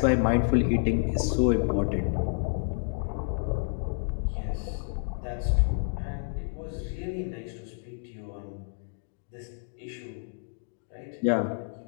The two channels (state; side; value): silent; right; digital silence